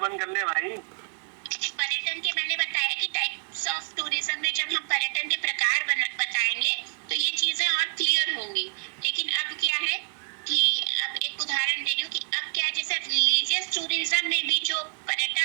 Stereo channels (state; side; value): silent; left; 60 dB below the other